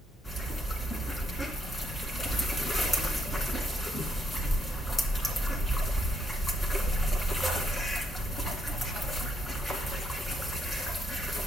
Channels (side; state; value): both; normal; correlation 0.75